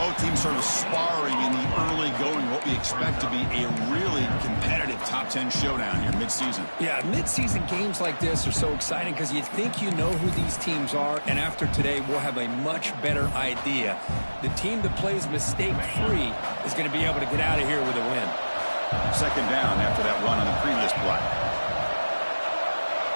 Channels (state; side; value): inverted; both; correlation -1.00